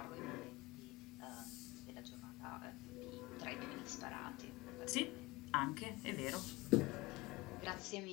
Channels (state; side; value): quieter; right; 21.8 dB